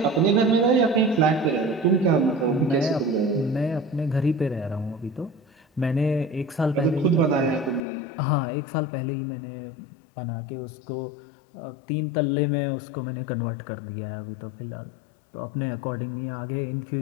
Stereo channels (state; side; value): drops out; right; at 7.8 s